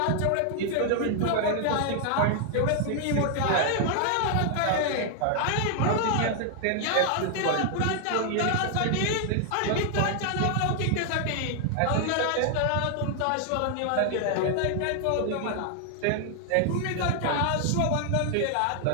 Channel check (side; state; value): both; different; correlation 0.00